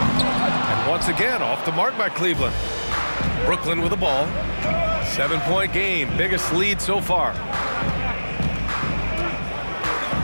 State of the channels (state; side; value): inverted; both; correlation -1.00